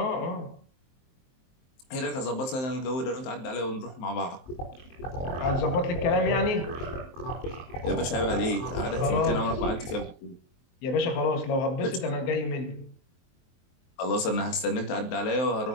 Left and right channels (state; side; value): late; right; 23 ms